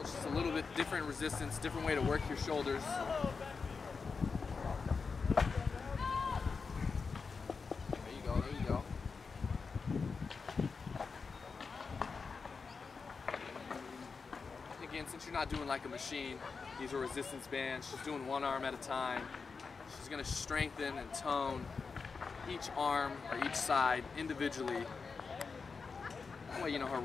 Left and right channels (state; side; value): quieter; right; 4.9 dB